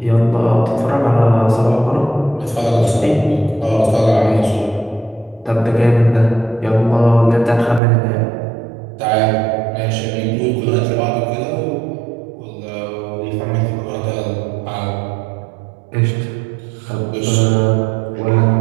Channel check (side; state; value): left; drops out; at 7.8 s